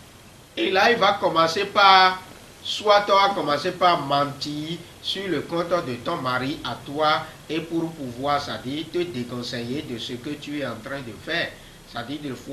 Et là, il va commencer par, soit tu vas commencer par mentir sur le compte de ton mari à toi, et pour pouvoir, ça dit, te déconseiller de ce que tu es en train de faire, ça dit, le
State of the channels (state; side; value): identical; both; correlation 1.00